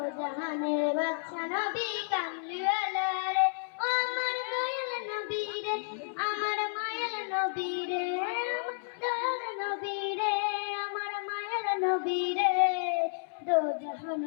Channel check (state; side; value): silent; right; 57 dB below the other